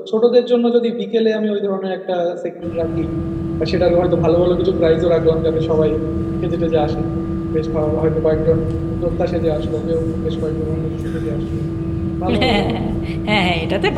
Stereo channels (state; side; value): identical; both; correlation 1.00